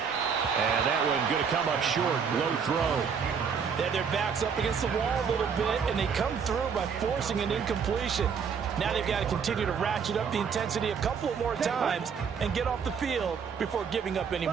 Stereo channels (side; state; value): left; quieter; 6.5 dB